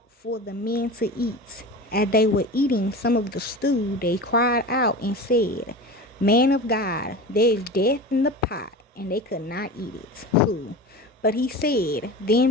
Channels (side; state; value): both; normal; correlation 0.31